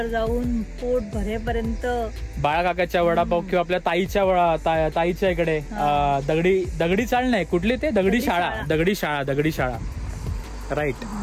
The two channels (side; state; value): both; identical; correlation 1.00